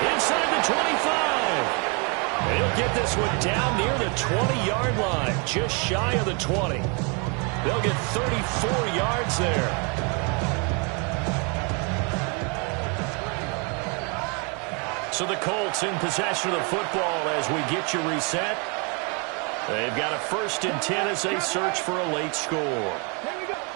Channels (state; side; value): quieter; left; 34.1 dB